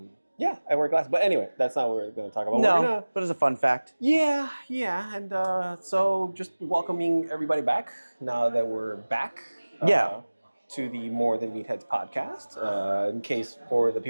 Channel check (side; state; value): both; inverted; correlation -1.00